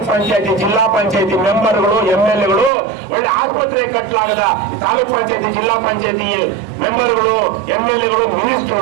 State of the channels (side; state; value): left; drops out; at 2.7 s